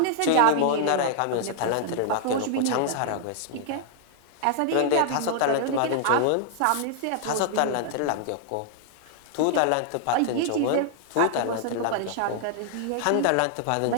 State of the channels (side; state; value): both; different; correlation -0.01